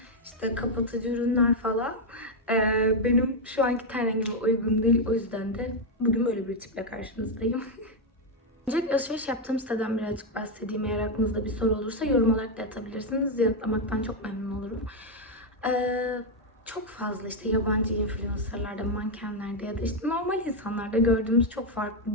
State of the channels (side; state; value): both; normal; correlation 0.02